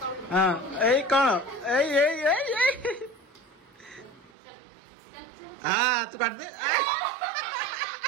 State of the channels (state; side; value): drops out; left; at 4.3 s